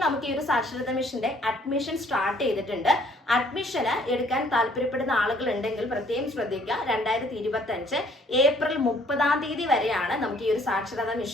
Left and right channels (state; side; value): normal; both; correlation 0.60